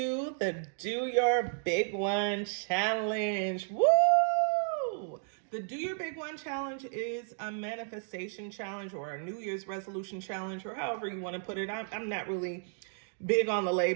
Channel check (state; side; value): silent; left; digital silence